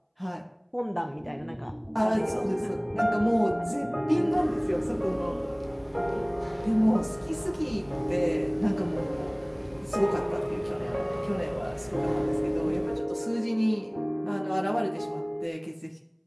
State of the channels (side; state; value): both; identical; correlation 1.00